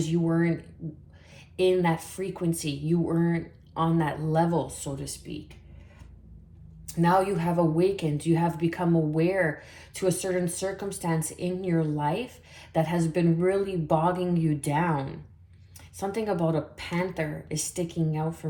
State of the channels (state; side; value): identical; both; correlation 1.00